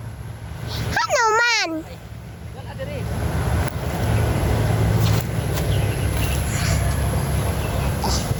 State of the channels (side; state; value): both; identical; correlation 1.00